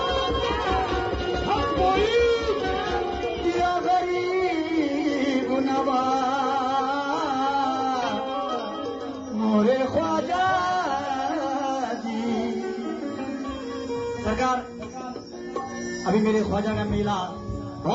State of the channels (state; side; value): identical; both; correlation 1.00